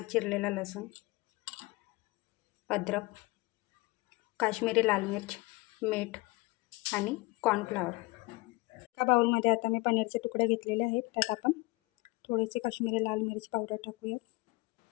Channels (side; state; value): right; quieter; 23.2 dB